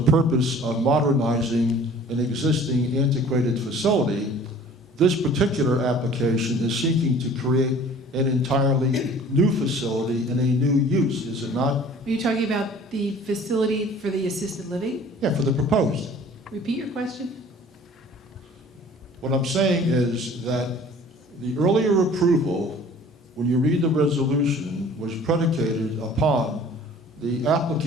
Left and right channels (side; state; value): both; normal; correlation 0.48